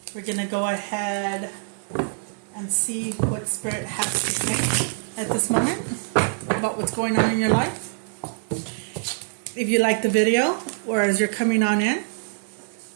We're going to go ahead and see what Spirit has to say at this moment about what's going on in your life. If you like the video, or as you're coming on in,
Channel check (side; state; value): left; silent; 59 dB below the other